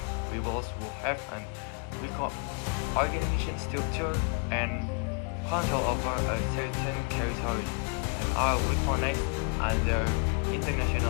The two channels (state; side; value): quieter; right; 34.9 dB